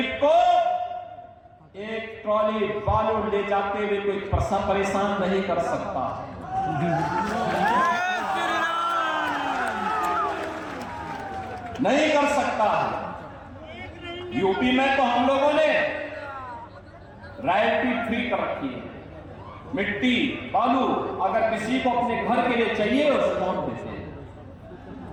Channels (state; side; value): identical; both; correlation 1.00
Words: को एक ट्रॉली बालू ले जाते हुए कोई परेशान नहीं कर सकता। नहीं कर सकता। यूपी में तो हम लोगों ने रॉयल्टी फ्री कर रखी है। मिट्टी, बालू अगर किसी को अपने घर के लिए चाहिए उसे कौन देते हैं?